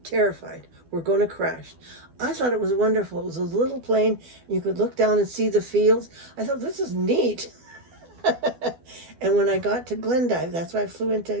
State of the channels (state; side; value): late; left; 12 ms